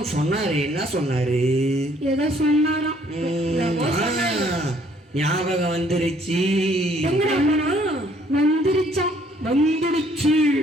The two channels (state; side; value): normal; both; correlation 0.63